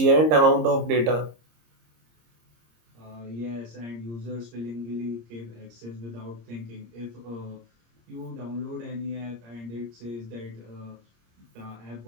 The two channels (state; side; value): late; left; 26 ms